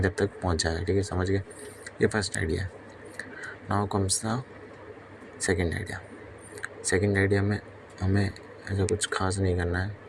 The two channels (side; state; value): both; identical; correlation 1.00